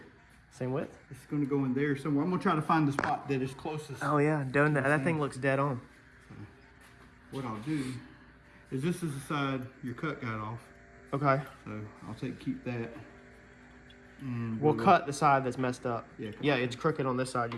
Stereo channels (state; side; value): identical; both; correlation 1.00